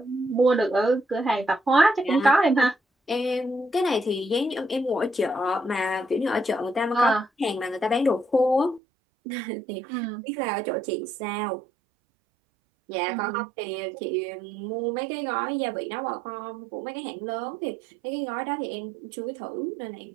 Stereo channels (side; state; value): left; drops out; at 8.8 s